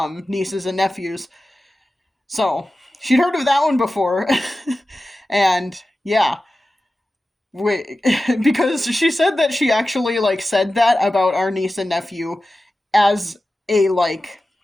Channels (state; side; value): normal; both; correlation 0.94